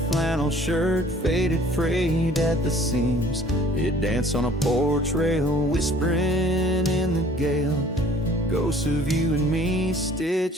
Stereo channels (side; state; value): both; normal; correlation 0.53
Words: shirt faded, frayed at the seams. It danced on a porch rail, whispering in the gale, ghosts of you and me